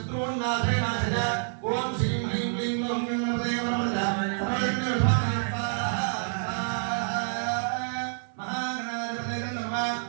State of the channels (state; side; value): silent; left; 59 dB below the other